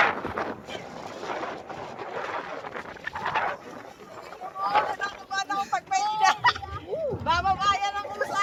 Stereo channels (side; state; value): both; identical; correlation 1.00